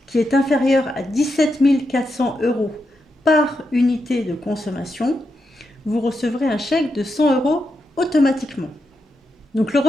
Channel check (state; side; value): normal; both; correlation 0.85